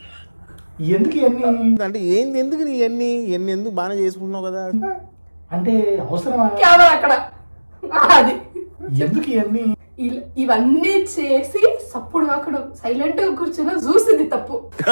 ఎందుకు ఇవన్నీ అంటే ఏంది, ఎందుకు నీ ఎన్ని ఎందుకు బాగానే చేసుకుంటున్నావు కదా? అంటే అవసరమా? కెమెరా అక్కడ. అది ఎందుకు ఇవన్నీ? ఇవన్నీ చేసి సప్పుడు అక్కడ సైలెంట్ గా కూర్చుని చూసింది తప్పు.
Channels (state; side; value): inverted; both; correlation -1.00